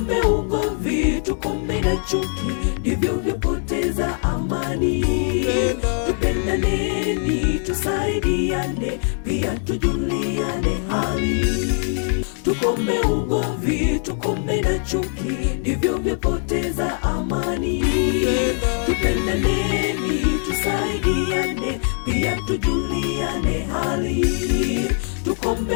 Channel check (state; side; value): silent; right; 55 dB below the other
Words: ugomvi, tukome na chuki, ndivyo vyapoteza amani. Tupendaneni, tusaidiane, pia tujuliane hali. Tukome ugomvi, tukome na chuki, ndivyo vyapoteza amani. Tupendaneni, tusaidiane, pia tujuliane hali.